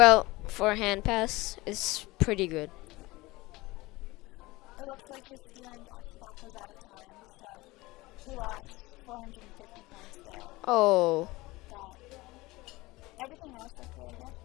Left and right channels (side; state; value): right; quieter; 20.9 dB